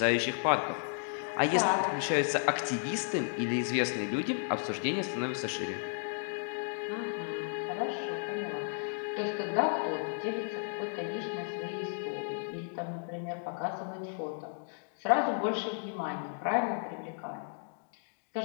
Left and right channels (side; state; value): right; silent; 55 dB below the other